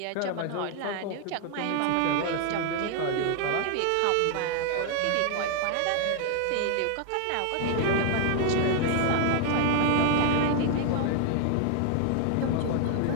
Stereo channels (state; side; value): different; both; correlation 0.00